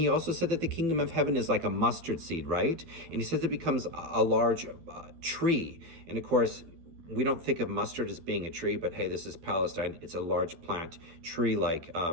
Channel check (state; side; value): late; left; 12 ms